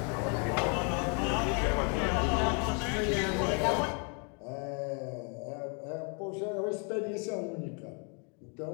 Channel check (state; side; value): quieter; right; 37.8 dB